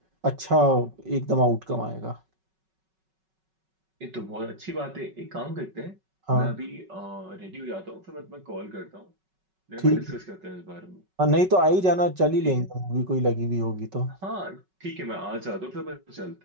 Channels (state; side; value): late; left; 5.3 ms